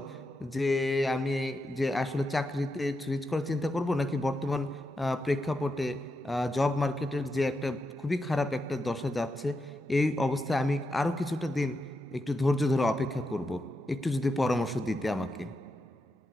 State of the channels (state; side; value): normal; both; correlation 0.86